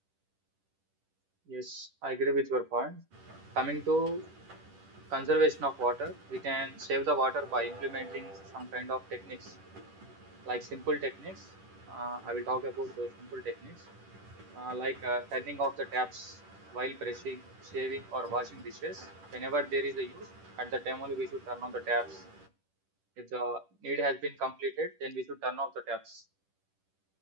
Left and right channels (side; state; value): left; late; 10 ms